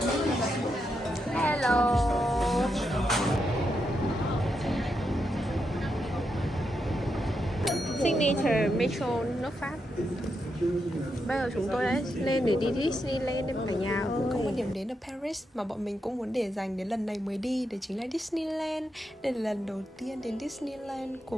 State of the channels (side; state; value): both; normal; correlation 0.83